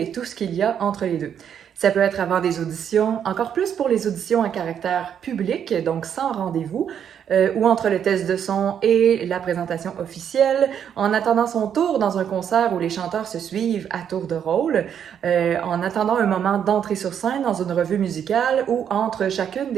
tout ce qu'il y a entre les deux. Ça peut être avant des auditions, encore plus pour les auditions à caractère public, donc sans rendez-vous, ou entre le test de son et la présentation officielle, en attendant son tour dans un concert où les chanteurs se suivent à tour de rôle, en attendant un moment d'entrée sur scène dans une revue musicale ou entre chacune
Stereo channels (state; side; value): quieter; left; 8.6 dB